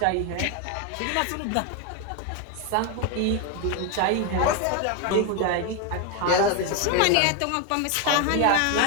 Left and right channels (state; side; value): different; both; correlation 0.01